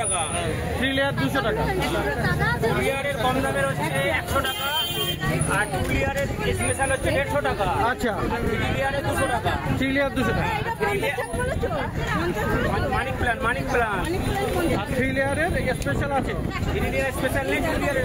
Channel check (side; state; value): both; identical; correlation 1.00